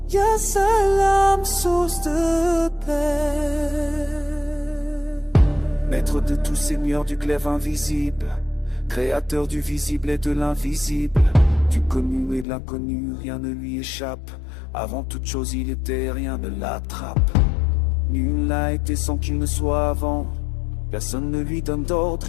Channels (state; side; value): drops out; right; at 12.5 s